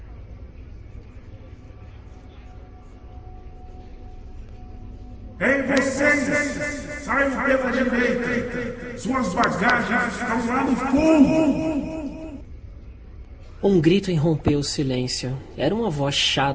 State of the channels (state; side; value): identical; both; correlation 1.00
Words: Ei, vocês! Saiam pela direita! Suas bagagens estão lá no fundo! Um grito irrompeu o silêncio. Era uma voz